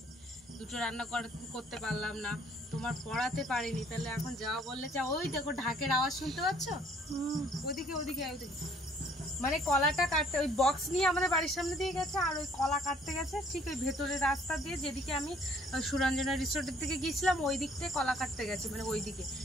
দুটো রান্না করতে পারলাম না, তোমার পড়াতে পারিনি। তাহলে এখন যাওয়া বললে যা। ওই দেখো ঢাকের আওয়াজ শুনতে পাচ্ছ? ওদিকে ওদিকে ওদিকে, মানে কলাটা কাটতে ওই বক্স নিয়ে আমাদের বাড়ির সামনে দিয়ে গেছে, আর ওই কলা কাটতে গেছে ঠিক ওই ভেতরের রাস্তা দিয়ে, যেদিকে আমি সুরঞ্জনা রিসোর্টের দিকে গিয়েছিলাম ওই দিক থেকে কলা কাটতে গেছে, মানে ওই দিকে,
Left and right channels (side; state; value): both; normal; correlation 0.60